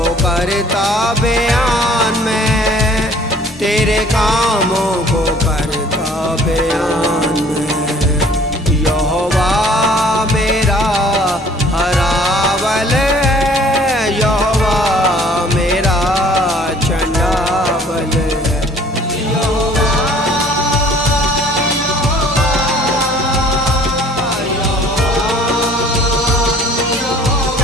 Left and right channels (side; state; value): both; normal; correlation 0.55